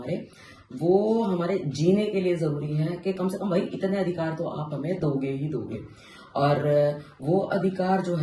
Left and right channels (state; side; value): identical; both; correlation 1.00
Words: वो हमारे जीने के लिए ज़रूरी है कि कम से कम भाई इतने अधिकार तो आप हमें दोगे ही दोगे। और वो अधिकार जो